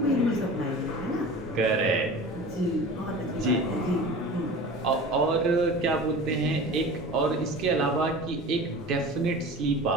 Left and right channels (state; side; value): normal; both; correlation 0.37